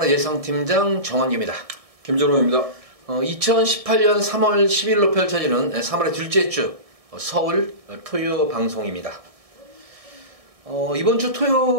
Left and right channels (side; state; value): left; late; 1.6 ms